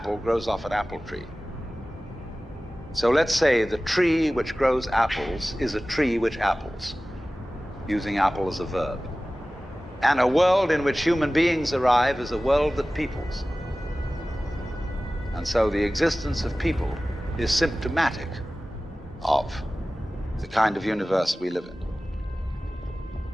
grows off an apple tree. So let's say the tree which grows apples is a tree which apples, using apple as a verb. And a world in which human beings arrive is a world that peoples. And so the existence of people is symptomatic of the kind of universe we live in.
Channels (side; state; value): both; normal; correlation 0.97